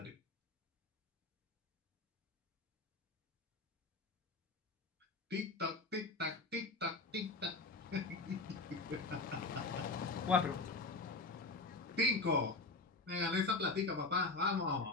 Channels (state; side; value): quieter; right; 3.4 dB